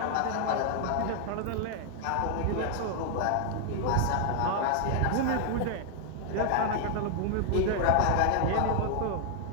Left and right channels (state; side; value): different; both; correlation 0.00